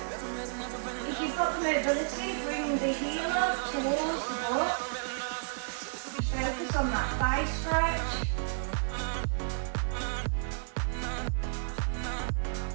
If you've got the mobility, bring the heel up towards the butt. Focus on that thigh stretch.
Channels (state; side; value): silent; left; digital silence